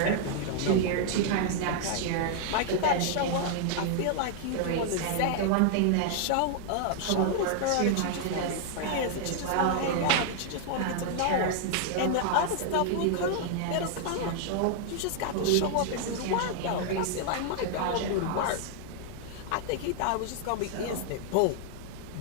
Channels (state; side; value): different; both; correlation 0.00